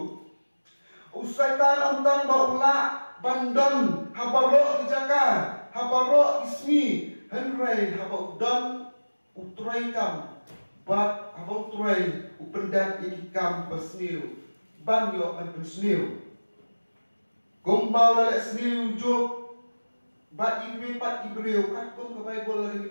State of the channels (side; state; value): both; inverted; correlation -1.00